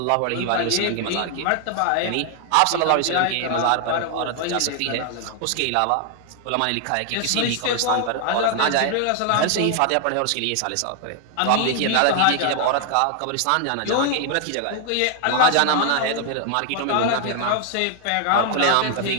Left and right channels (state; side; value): different; both; correlation 0.00